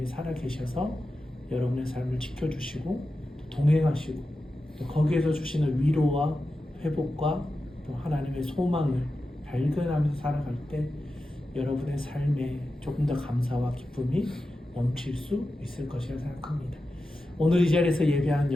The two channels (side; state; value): both; normal; correlation 0.92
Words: 살아계셔서 여러분의 삶을 지켜주시고 동행하시고 또 거기에서 주시는 위로와 회복과 또 하나님의 소망을 발견하면서 살아갈 때 여러분의 삶에 조금 더 감사와 기쁨이 넘칠 수 있을 것이라 생각합니다. 오늘 이 자리에서 예배하는